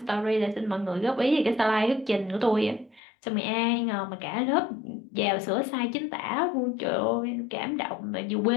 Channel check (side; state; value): right; drops out; at 3.0 s